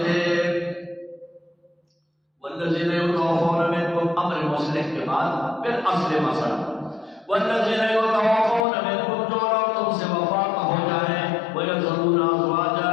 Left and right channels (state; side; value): drops out; right; at 8.7 s